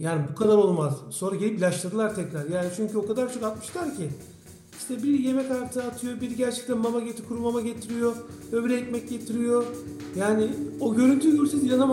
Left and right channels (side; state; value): both; identical; correlation 1.00